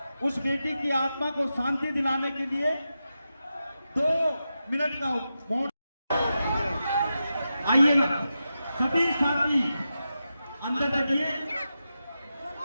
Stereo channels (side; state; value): both; inverted; correlation -0.89